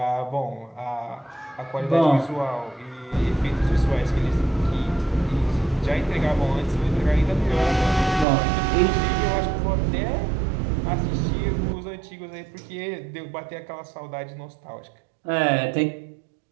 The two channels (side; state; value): left; drops out; at 8.2 s